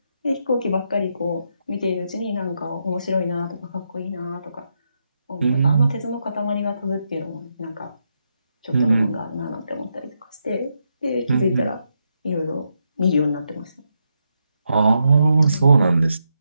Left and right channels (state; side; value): inverted; both; correlation -0.82